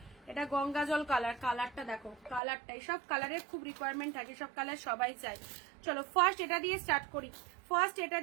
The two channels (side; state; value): left; drops out; at 2.4 s